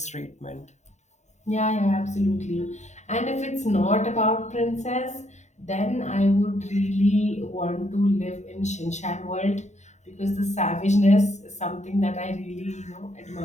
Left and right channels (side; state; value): right; late; 0.34 ms